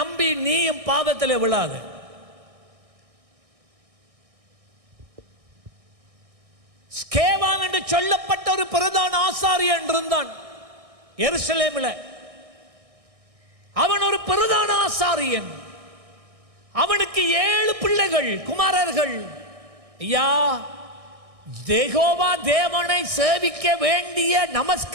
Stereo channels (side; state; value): left; late; 1.6 ms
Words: நீயும் பாவத்திலே விழாத. ஸ்கேவான் என்று சொல்லப்பட்ட ஒரு பிரதான ஆசாரியன் இருந்தான் எருசலேமில். அவன் ஒரு பிரதான ஆசாரியன். அவனுக்கு 7 பிள்ளைகள், குமாரர்கள். ஐயா, யெகோவா தேவனை சேவிக்க வேண்டிய